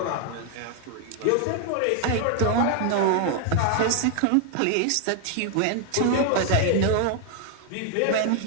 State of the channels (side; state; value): both; different; correlation 0.00